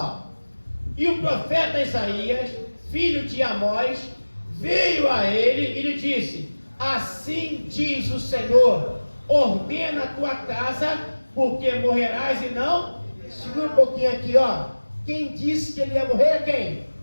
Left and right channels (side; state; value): both; inverted; correlation -1.00